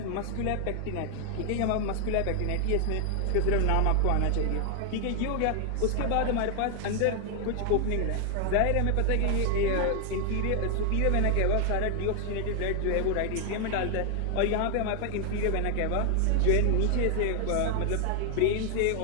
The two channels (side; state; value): both; different; correlation 0.00